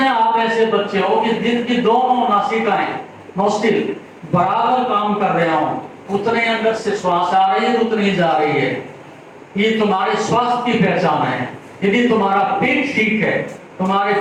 आप ऐसे बच्चे हो कि जिनकी दोनों नासिकाएं, नोस्टिल बराबर काम कर रहे हो, उतने अंदर से श्वास आ रही है, उतनी जा रही है। ये तुम्हारे स्वास्थ्य की पहचान है। यदि तुम्हारा पेट ठीक है, तुम्हारे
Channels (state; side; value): identical; both; correlation 1.00